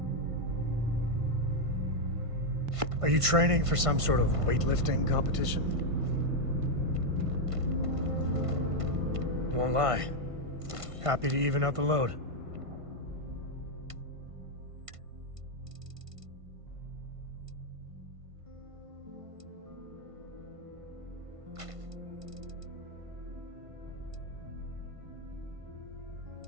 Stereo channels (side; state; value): left; late; 1.5 ms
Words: Are you training for some sort of weightlifting competition? Won't lie. Happy to even out the load.